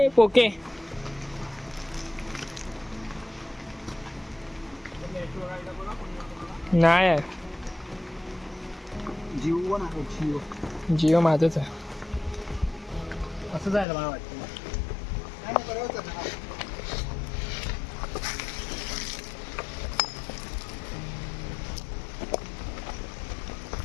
पोके नाही आहे. जिओ माझंच आहे. असं जायला मला वाटतं.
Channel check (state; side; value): drops out; right; at 13.9 s